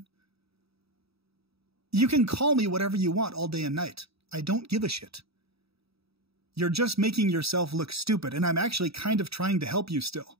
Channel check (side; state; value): left; late; 0.77 ms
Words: You can call me whatever you want all day and night. I don't give a shit. You're just making yourself look stupid, and I'm actually kind of trying to help you still,